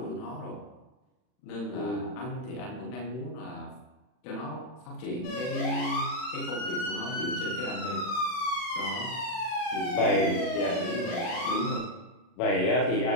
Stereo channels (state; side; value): late; right; 40 ms